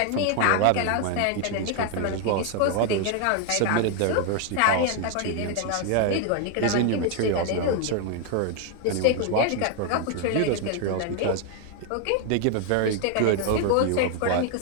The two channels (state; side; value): different; both; correlation 0.00